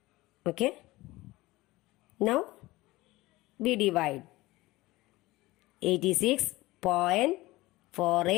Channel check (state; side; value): quieter; right; 19.5 dB